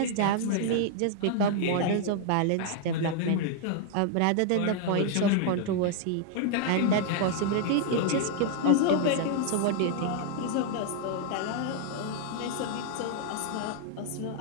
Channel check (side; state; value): both; different; correlation -0.01